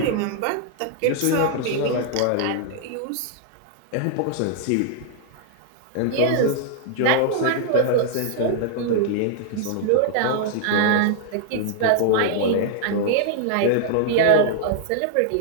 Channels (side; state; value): both; different; correlation 0.00